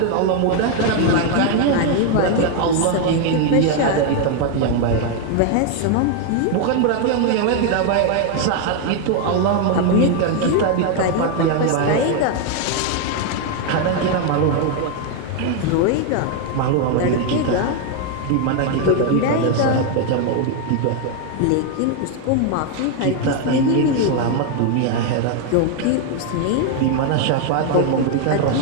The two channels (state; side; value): different; both; correlation 0.01